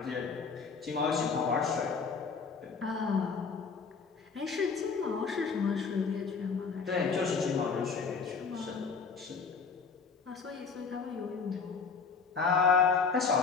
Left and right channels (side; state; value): right; quieter; 5.3 dB